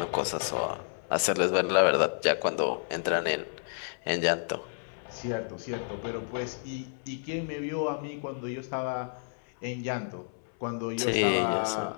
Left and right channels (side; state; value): right; silent; 58 dB below the other